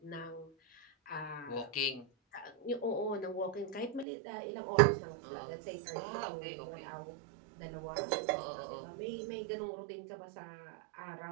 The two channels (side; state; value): left; drops out; at 4.0 s